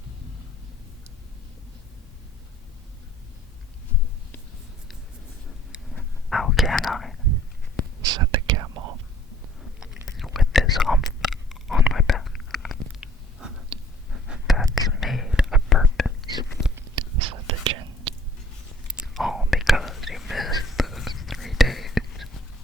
How can I? Said the camel, with this hump on my back. That's made a purpose, said the gin. All because you missed those 3 days.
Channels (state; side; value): normal; both; correlation 0.56